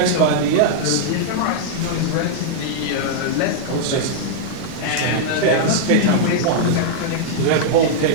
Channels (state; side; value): different; both; correlation -0.02